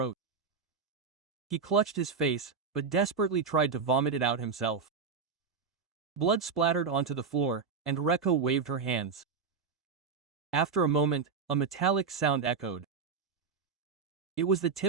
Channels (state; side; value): quieter; left; 5.4 dB